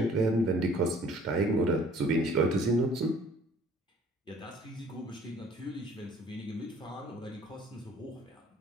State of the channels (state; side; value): normal; both; correlation 0.54